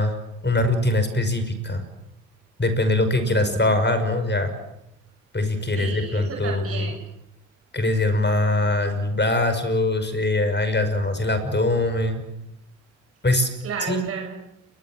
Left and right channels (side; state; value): both; normal; correlation 0.38